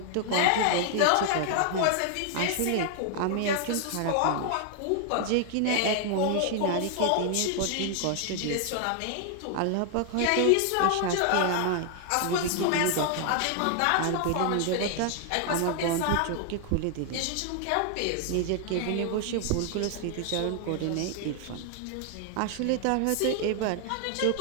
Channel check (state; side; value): different; both; correlation 0.00